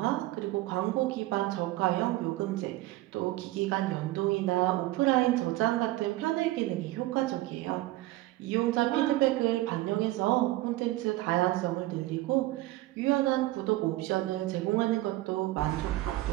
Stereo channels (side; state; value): left; quieter; 17.7 dB